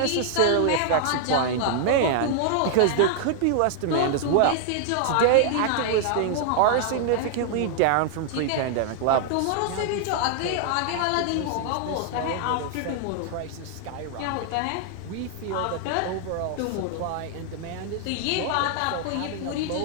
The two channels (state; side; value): different; both; correlation 0.00